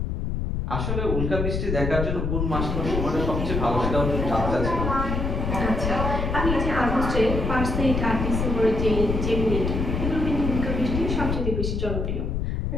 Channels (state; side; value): noise; left; rumble, 1 dB below the sound